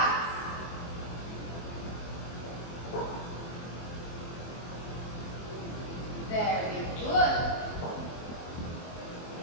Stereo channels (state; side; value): late; right; 24 ms